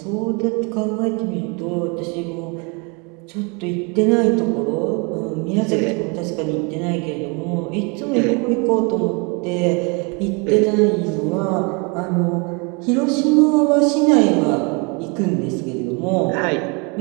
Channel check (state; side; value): quieter; left; 31.4 dB